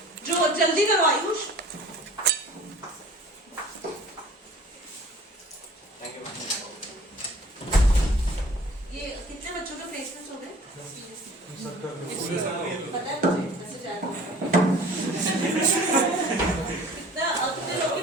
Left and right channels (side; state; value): both; normal; correlation 0.47